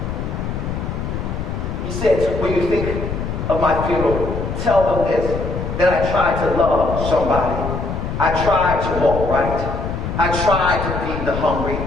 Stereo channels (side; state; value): left; noise; rumble, 4 dB below the sound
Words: he said, when you think of my funeral, tell them this, that I tried to love somebody. I tried to walk right. I tried to feed the hungry,